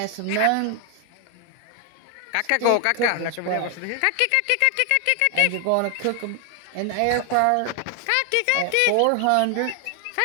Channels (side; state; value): both; different; correlation 0.00